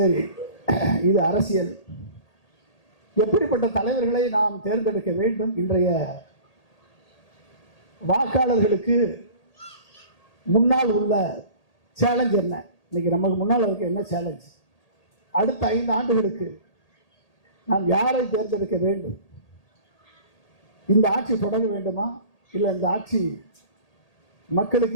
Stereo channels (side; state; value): right; late; 1.8 ms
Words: இது அரசியல். எப்படிப்பட்ட தலைவர்களை நாம் தேர்ந்தெடுக்க வேண்டும்? இன்றைய வாக்காளர்களுக்கு முன்னால் உள்ள சேலஞ்ச் என்ன? இன்னைக்கு நமக்கு முன்னால் இருக்க என்ன சேலஞ்ச்? அடுத்த 5 ஆண்டுகளுக்கு நாம் யாரை தேர்ந்தெடுக்க வேண்டும்? இந்த ஆட்சி தொடர வேண்டுமா, இல்லை இந்த ஆட்சி